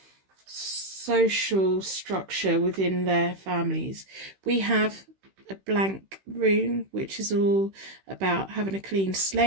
social structure within their families. We have a blank rune, which is all about having a clean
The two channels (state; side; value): late; left; 15 ms